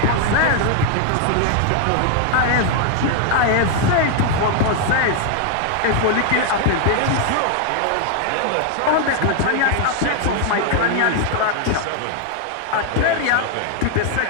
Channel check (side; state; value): both; different; correlation 0.00